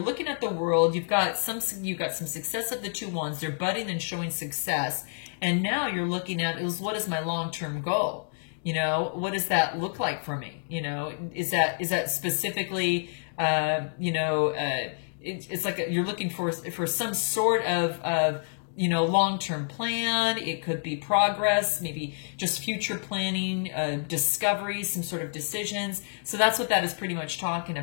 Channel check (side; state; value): right; silent; digital silence